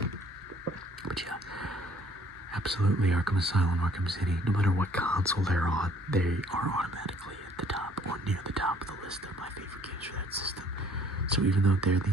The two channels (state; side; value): normal; both; correlation 0.59